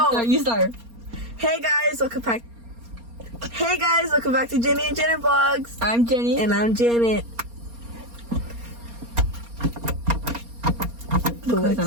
You start. Hey guys, welcome back. Hey guys, welcome back to Jenny and Janet Vlogs. I'm Jenny. And I'm Janet. The lights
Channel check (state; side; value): late; left; 4.3 ms